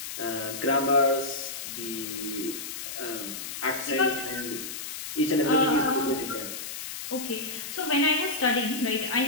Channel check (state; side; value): noise; left; hiss, 7 dB below the sound